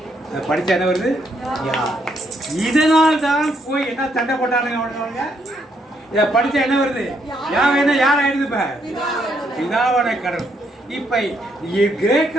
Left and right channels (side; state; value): both; normal; correlation 0.74